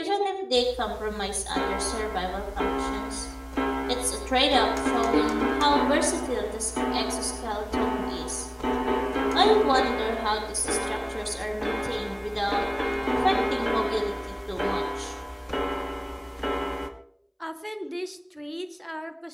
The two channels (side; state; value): both; identical; correlation 1.00